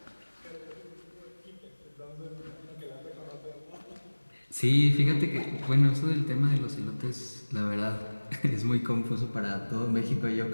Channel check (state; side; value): inverted; both; correlation -1.00